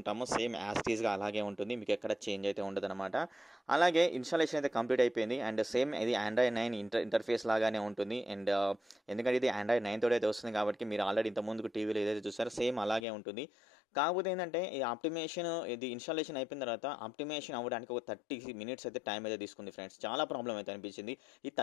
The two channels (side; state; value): right; drops out; at 13.1 s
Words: సేమ్ యాస్టీస్గా అలాగే ఉంటుంది, మీకు ఎక్కడ చేంజ్ అయితే ఉండదు అనమాట. అలాగే ఇన్స్టాలేషన్ అయితే కంప్లీట్ అయిపోయింది. అండ్ సేమ్ ఇది ఆండ్రాయిడ్ 9 ఇంటర్ఫేస్ లాగానే ఉంటుంది. అండ్ ఎందుకంటే ఇది ఆండ్రాయిడ్ 9 తోటి అయితే వస్తుంది కాబట్టి మీరు ఆల్రెడీ ఇంతకుముందుకు టీవీలో ఏదైతే చూస్తారో సేమ్ అలాగే ఉంటుంది. కాకపోతే ఏంటంటే ఈ ఇది ఇన్స్టాలేషన్ అయిపోయిన తర్వాత ఆప్టిమేషన్ అవ్వడానికి ఒక 30 minutes అయితే టైం అయితే తీసుకుంది ఫ్రెండ్స్. చాలా ప్రాబ్లం అయితే అనిపించింది. ఈ